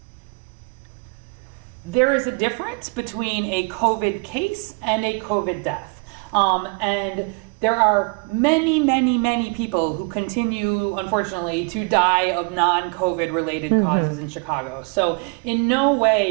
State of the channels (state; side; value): quieter; left; 34.1 dB